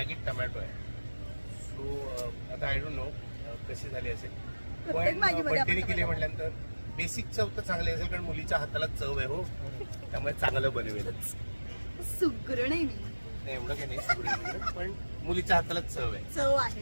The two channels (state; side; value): inverted; both; correlation -1.00